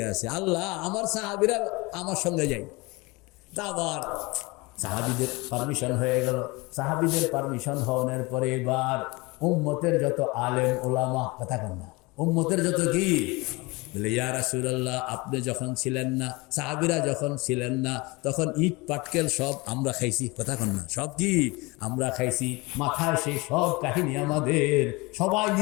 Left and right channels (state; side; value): quieter; right; 24.7 dB